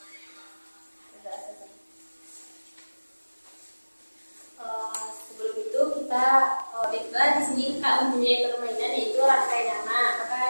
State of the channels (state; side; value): inverted; both; correlation -1.00